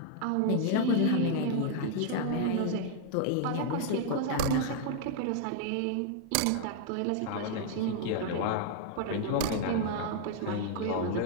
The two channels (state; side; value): different; both; correlation 0.00